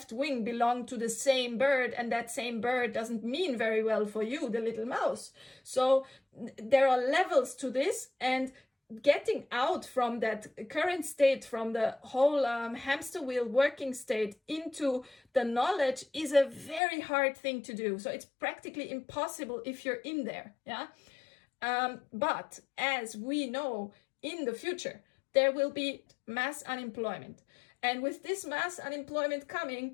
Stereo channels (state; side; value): drops out; right; at 16.8 s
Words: wing belong to the same bird, and that same bird doesn't mean very well for you, the little mouse. So there are levels to this, and getting out from that current state, from the whole hamster wheel working state into the knowledge is a very hard thing to do. So it's practically impossible if you're in there. Yeah. But as we know, in the future, there will be mass unemployment. And with this mass unemployment